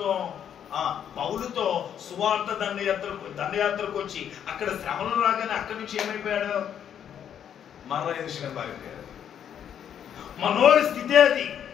పౌలుతో సువార్త దండయాత్రకు వచ్చి అక్కడ శ్రమలు రాగానే అక్కడి నుంచి ఏమైపోయాడు? మరలా యెరూషలేము పారిపోయాడు. మనోడి స్థితి అది.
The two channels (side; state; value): right; quieter; 9.1 dB